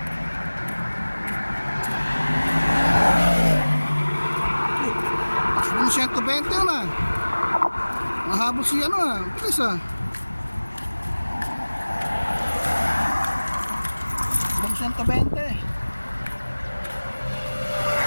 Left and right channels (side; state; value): both; inverted; correlation -1.00